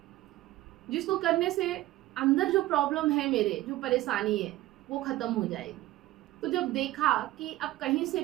जिसको करने से अंदर जो प्रॉब्लम है, मेरे जो परेशानी है, वो खत्म हो जाएगी। तो जब देखा कि अब कहीं से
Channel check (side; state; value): left; quieter; 16.4 dB